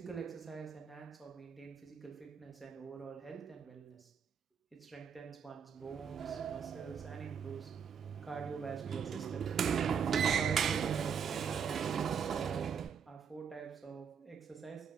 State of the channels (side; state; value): left; quieter; 7.1 dB